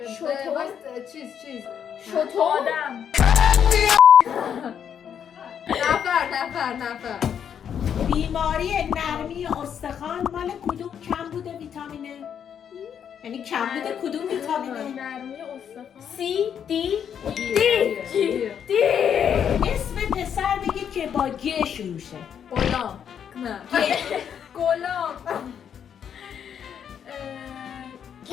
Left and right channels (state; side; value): quieter; right; 8.3 dB